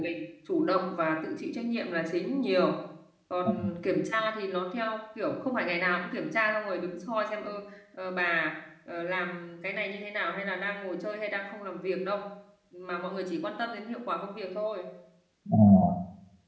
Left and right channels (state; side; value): identical; both; correlation 1.00